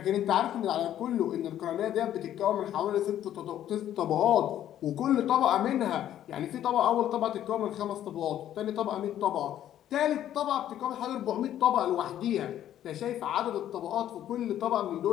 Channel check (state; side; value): quieter; right; 11.5 dB